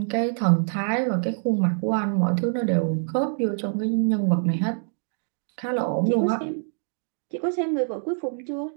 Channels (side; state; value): left; silent; digital silence